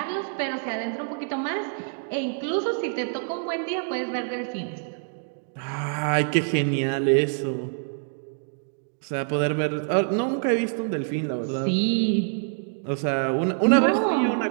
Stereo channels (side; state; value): left; silent; 61 dB below the other